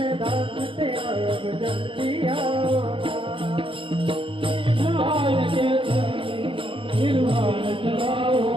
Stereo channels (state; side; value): late; left; 0.25 ms